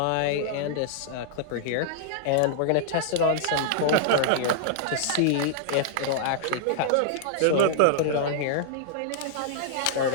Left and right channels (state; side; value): different; both; correlation -0.01